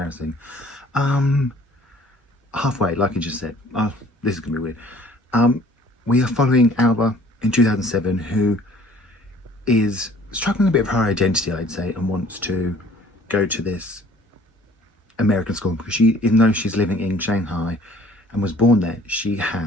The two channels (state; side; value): normal; both; correlation 0.54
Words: Halfway, like I just said. This is gonna be weird. We are following Alva in 2007, who is struggling a bit of her identity, I'd say, and wants to go to this American school because even though she's living in Shanghai and was born there, she